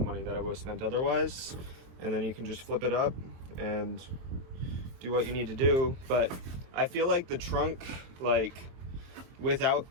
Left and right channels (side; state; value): left; late; 22 ms